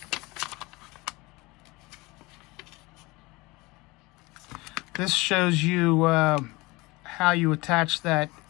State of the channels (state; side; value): quieter; right; 23.2 dB